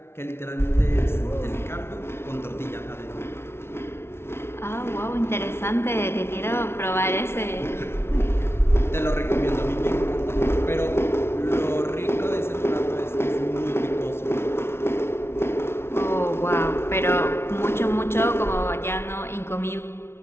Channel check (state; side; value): late; right; 0.12 ms